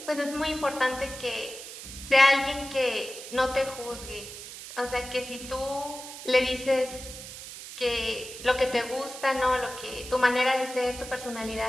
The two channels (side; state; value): right; noise; hiss, 12 dB below the sound